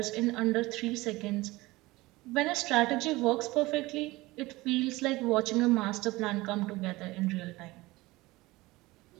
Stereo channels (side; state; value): left; quieter; 20.4 dB